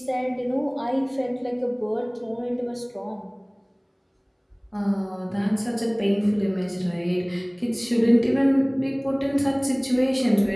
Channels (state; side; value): identical; both; correlation 1.00